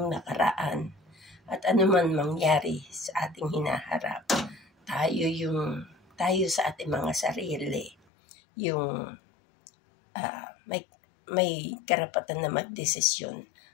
nakaraan at ano man mangyari sa ating hinaharap, tayo sa ating mga sarili, yung may karapatan na magdesisyon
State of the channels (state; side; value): drops out; right; at 8.0 s